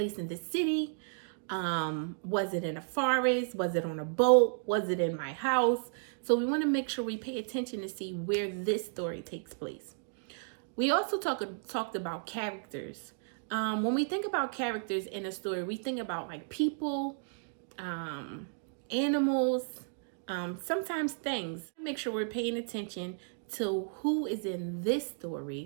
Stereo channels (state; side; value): silent; left; digital silence